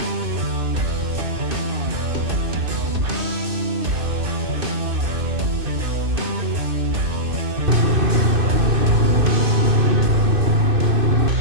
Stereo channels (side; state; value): left; late; 2.6 ms